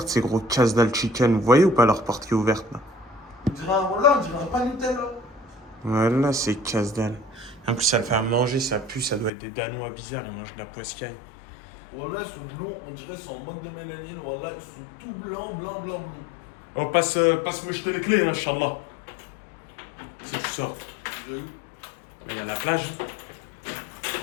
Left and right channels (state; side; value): drops out; right; at 9.3 s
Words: ces gros casse-dalle chicken. Vous voyez ou pas leur porte qui est ouverte là? On dirait un pas Nutella. Voilà, c'est casse-dalle. En plus, ça le fait à manger, ça pue, ça doit être des Danois bizarres, ils mangent de la poiscaille. Voilà, ils sont blonds, on dirait qu'ils sont en manque de mélanine. Voilà, ils sont tout blancs. Oh, passe-moi jeter les clés, hein, Inch'Allah. Si tu sors. Mais il y a la plage.